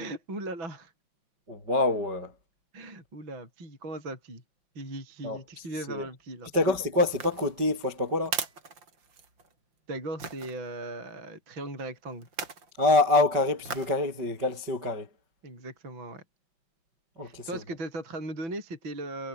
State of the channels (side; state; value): left; late; 5.7 ms